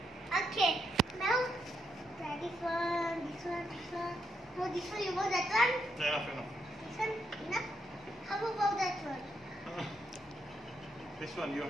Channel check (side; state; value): both; normal; correlation 0.79